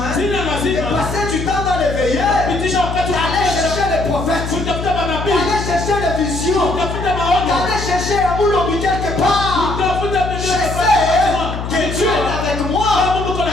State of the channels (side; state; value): left; noise; hum, 6 dB below the sound